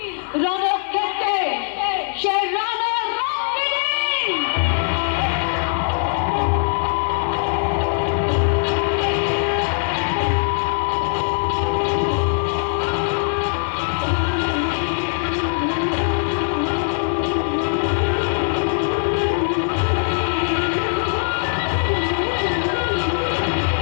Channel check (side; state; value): right; silent; digital silence